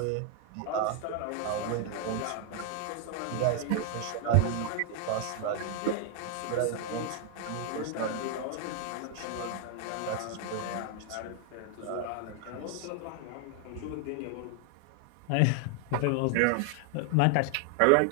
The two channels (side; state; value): both; different; correlation 0.00